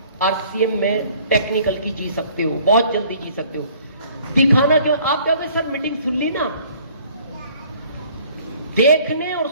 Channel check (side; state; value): both; inverted; correlation -0.56